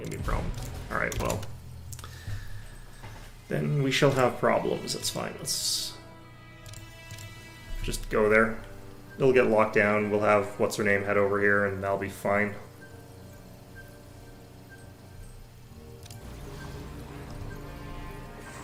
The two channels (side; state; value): both; identical; correlation 1.00